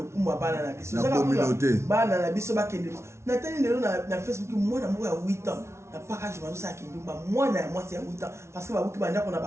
bana na biso ezaka bana na biso bakende na tani lelo na Facebook mwana moko ya 8 ans na package bazo sa kindumba mwana ya mwasi ya 8 ans parce que babuki banda kona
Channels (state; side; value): late; left; 0.13 ms